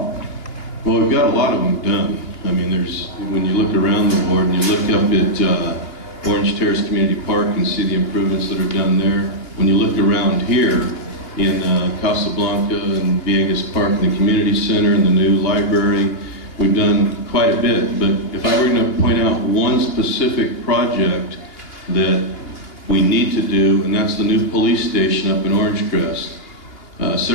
Well, we've got a lot of them done. I mean, when you look around the ward and you look up at Orange Terrace Community Park and see the improvements that are done there. When you look around here in Casablanca and Viegas Park and the community center and the new library, we've done quite a bit. But if I were going to point out one specific project that we need to do, and that's the new police station up in Orange Crest.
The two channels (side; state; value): right; late; 2.8 ms